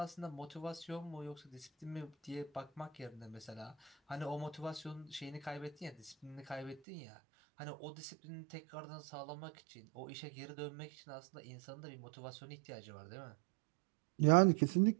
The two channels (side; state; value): left; drops out; at 6.8 s